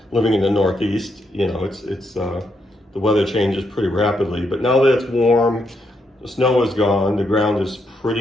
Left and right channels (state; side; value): normal; both; correlation 0.78